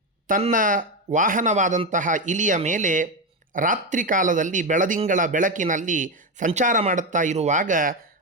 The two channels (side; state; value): both; normal; correlation 0.12